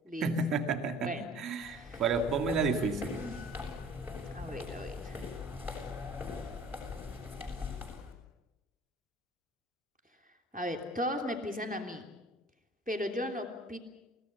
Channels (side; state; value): both; normal; correlation 0.49